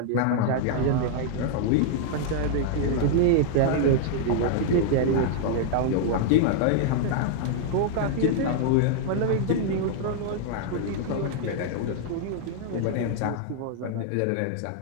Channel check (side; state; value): both; different; correlation -0.01